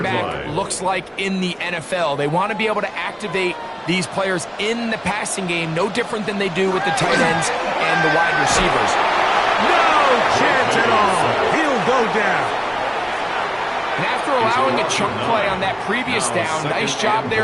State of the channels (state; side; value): identical; both; correlation 1.00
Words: back looks like in the NFL. They want to be able to activate these players in the passing game, no different than they do with the tight ends and the wide receivers. No chance at all. He'll go down. And after allowing a chunk play on that previous down, nice job